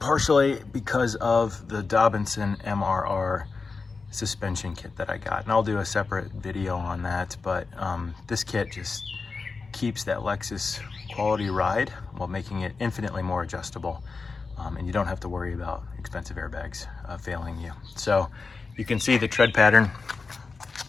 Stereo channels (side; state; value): right; quieter; 4.4 dB